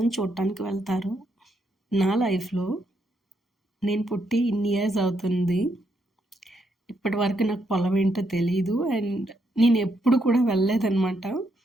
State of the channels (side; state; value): both; normal; correlation 0.77